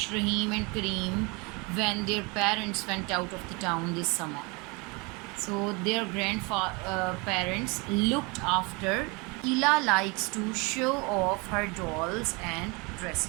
Rahim and Kareem when their parents went out of the town this summer. So their grandparents looked after. Ila likes to show off her dolls and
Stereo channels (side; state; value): left; quieter; 28.4 dB